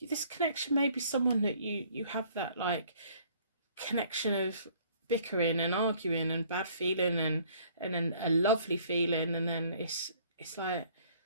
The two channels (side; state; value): both; inverted; correlation -0.58